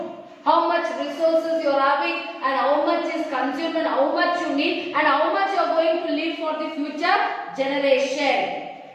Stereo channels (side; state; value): both; identical; correlation 1.00